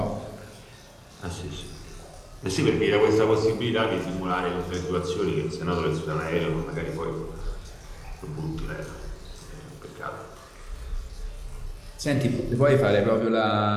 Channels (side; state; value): both; identical; correlation 1.00